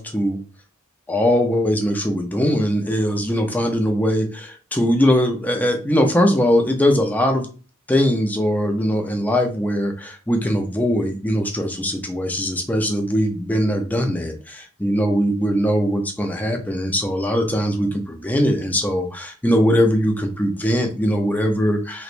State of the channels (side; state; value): both; normal; correlation 0.81